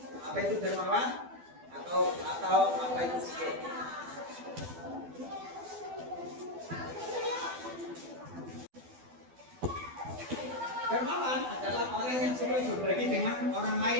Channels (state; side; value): late; left; 12 ms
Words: Apa itu dermawan? Atau apa itu kikir? Dermawan adalah orang yang suka berbagi dengan orang